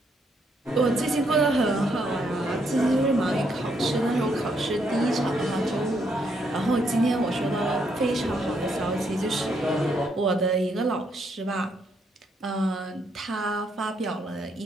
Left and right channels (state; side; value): normal; both; correlation 0.74